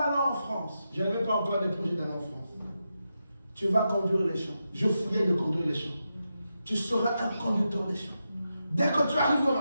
aller en France. Je n'avais pas encore des projets d'aller en France. Tu vas conduire les champs. Je fouillais de conduire les champs. Tu seras un conducteur des champs. Dès que tu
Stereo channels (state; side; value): inverted; both; correlation -0.87